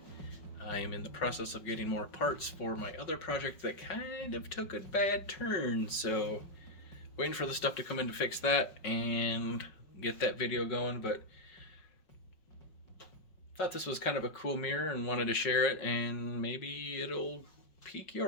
I am in the process of getting more parts for my other project that kind of took a bad turn, so waiting for the stuff to come in to fix that and get that video going. But thought this was kind of a cool mirror and wanted to share it, and maybe it'll pique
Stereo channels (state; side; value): late; right; 5.4 ms